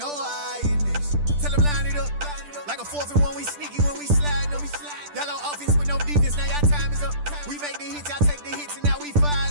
I in this. Tell them line it up. Like a 4th and 1, we sneaky when we slide them. Y'all on offense with no defense, now y'all time is up. We make the hits, y'all take the hits, and now we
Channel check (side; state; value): left; late; 10 ms